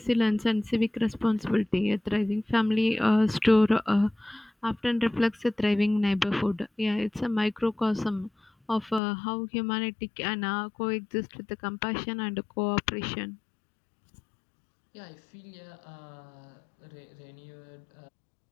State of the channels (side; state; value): right; drops out; at 9.0 s